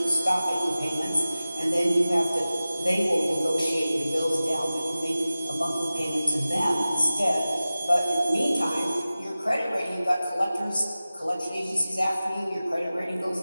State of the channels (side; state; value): both; inverted; correlation -0.96